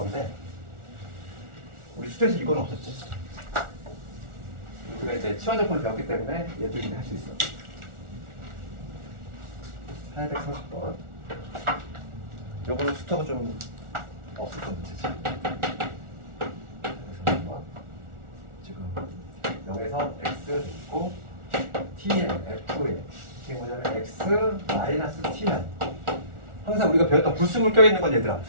우리 수트에서 이건 없었지. 우리가 이제 치환적분을 배웠기 때문에 얘도 이제 할 수 있어. 830번. 요거는 수트가 좀 없었던 문제지. 그래서 한번 지금 0에서 x 있고 tn, fn 이게 뭐냐면 x 마이너스 tn. 항상 우리가 배웠던 불순물 껴있는 건 얘들아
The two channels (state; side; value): late; left; 1.4 ms